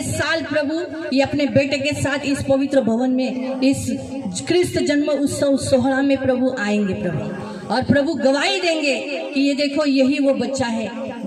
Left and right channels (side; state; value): both; identical; correlation 1.00